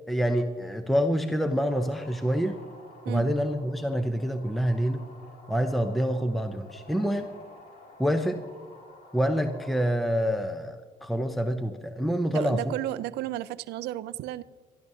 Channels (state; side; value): normal; both; correlation 0.86